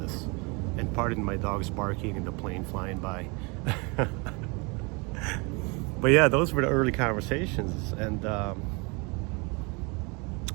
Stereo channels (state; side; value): quieter; left; 29.9 dB